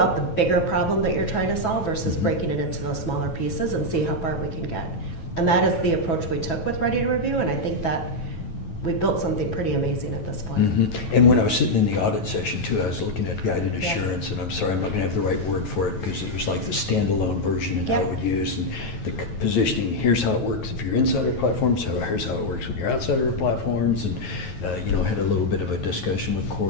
the bigger problem that you're trying to solve versus breaking it into those smaller pieces and see how far we can get. And that is the approach we took with Ready to Review, and I think that we built something pretty amazing at this point. And when I was sitting in the audit session too, I was looking at guided assurance, and I'm sorry, I'm not gonna have the right word for it, because it was like the standalone version and how it would use, and the positioning, here's how it works if you're inside our platforms, so here's how it works when you're outside our platforms, and you know, had a little bit of a discussion with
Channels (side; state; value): right; late; 9.2 ms